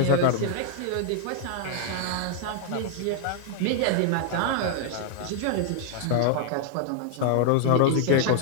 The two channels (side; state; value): both; different; correlation -0.01